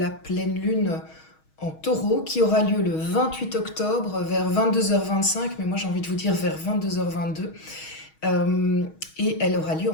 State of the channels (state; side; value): late; right; 6.3 ms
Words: pleine lune en taureau qui aura lieu le 28 octobre vers 22h25, mais moi j'ai envie de vous dire vers 22h22. Et elle aura lieu